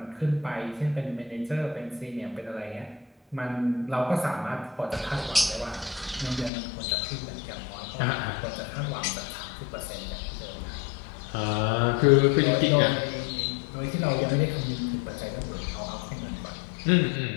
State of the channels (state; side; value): drops out; right; at 6.5 s